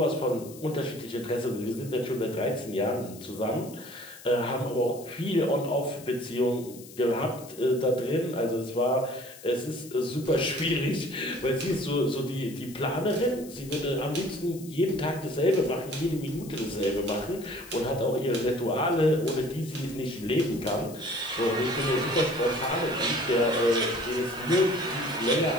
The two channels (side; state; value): left; noise; hiss, 18 dB below the sound